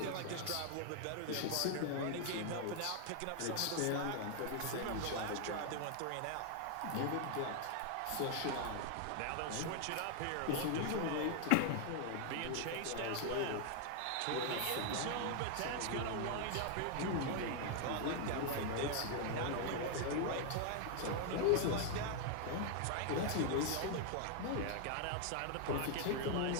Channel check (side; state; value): both; different; correlation 0.00